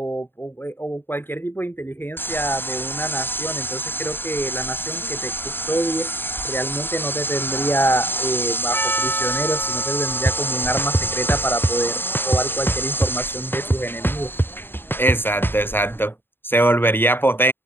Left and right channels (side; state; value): right; late; 0.10 ms